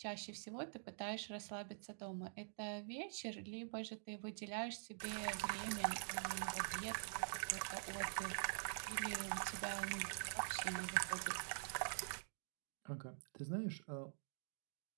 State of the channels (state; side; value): silent; left; digital silence